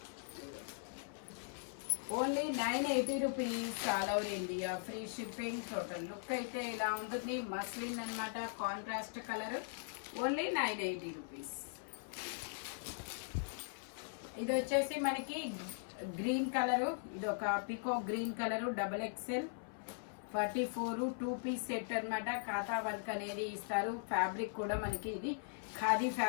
Only 980 rupees, all over India free shipping. Total look అయితే ఇలా ఉంటుంది. మస్లిన్ అన్నమాట, కాంట్రాస్ట్ కలర్. Only 980 rupees. ఇది వచ్చేసి మనకి గ్రీన్ కలరు. ఇది ఒక పికో green colour, XXL 44 2 piece set అన్నమాట. ఖాతా వర్క్ అనేది ఇస్తారు. ఫ్యాబ్రిక్ కూడా మనకి ఇది ఖాదీ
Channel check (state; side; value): silent; right; 51 dB below the other